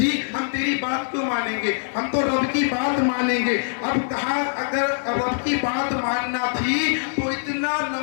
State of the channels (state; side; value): silent; right; 56 dB below the other